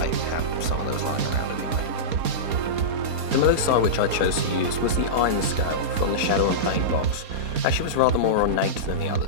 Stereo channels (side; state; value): left; late; 4.2 ms